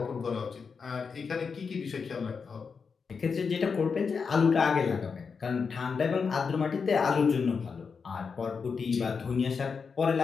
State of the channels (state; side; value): quieter; right; 5.5 dB